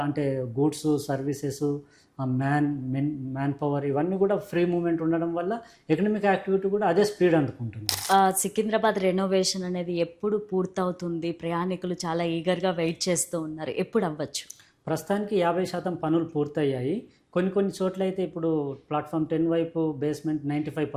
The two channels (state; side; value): identical; both; correlation 1.00